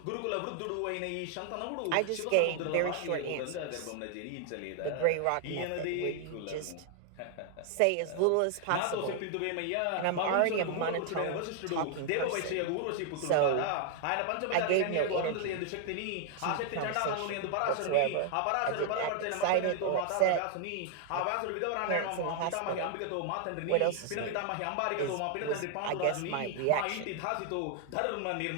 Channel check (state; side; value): different; both; correlation 0.00